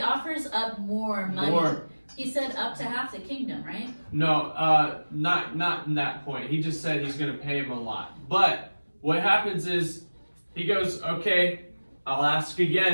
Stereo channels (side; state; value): both; inverted; correlation -1.00